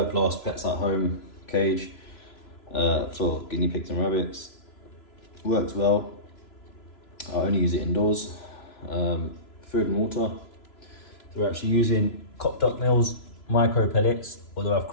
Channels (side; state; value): right; late; 3.0 ms